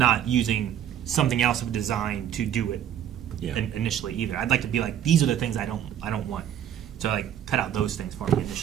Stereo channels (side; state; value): left; quieter; 10.1 dB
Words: using something else of design to do it initially either. I'd like to be like, these are the things I don't want. So, like, cut out those things for me